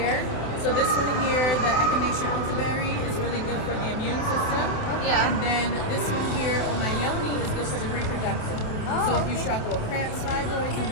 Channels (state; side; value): late; right; 27 ms